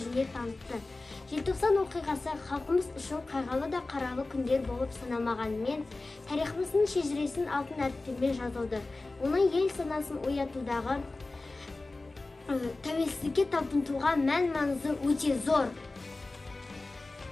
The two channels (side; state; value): right; quieter; 3.2 dB